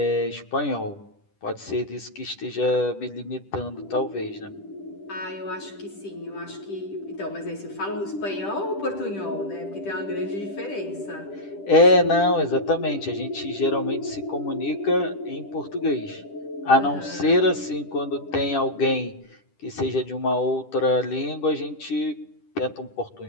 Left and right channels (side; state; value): right; late; 10 ms